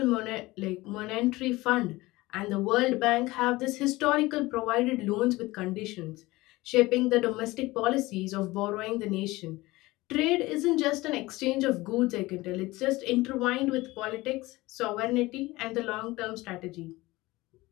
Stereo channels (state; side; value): quieter; right; 20.1 dB